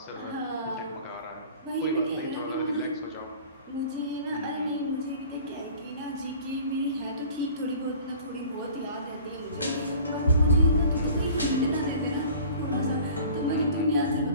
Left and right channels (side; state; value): both; inverted; correlation -0.46